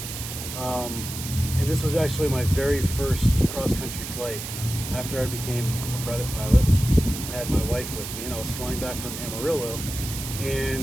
and this was actually my very first cross-country flight after I became a private pilot. I had my wife with me, and I was flying back from Amarillo,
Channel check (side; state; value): right; noise; hiss, 8 dB below the sound